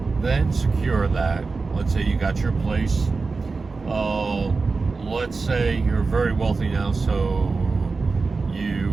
then secure that, let's say you got your place, let's say you're very wealthy now, so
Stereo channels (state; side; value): quieter; left; 4.1 dB